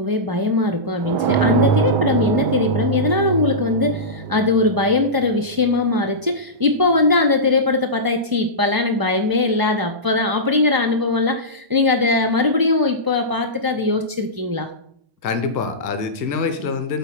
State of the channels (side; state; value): left; late; 1.0 ms